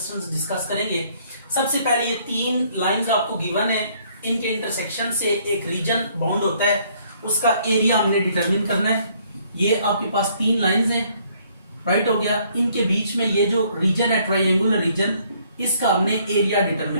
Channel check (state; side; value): inverted; both; correlation -0.64